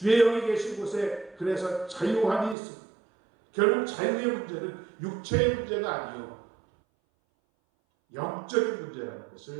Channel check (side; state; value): left; drops out; at 2.6 s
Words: 영이 계신 곳에 그래서 자유함이 있습니다. 결국 자유의 문제는 육체의 문제가 아니요 영적인 문제라는